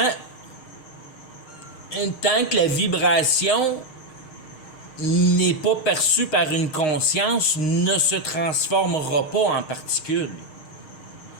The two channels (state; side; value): late; right; 6.4 ms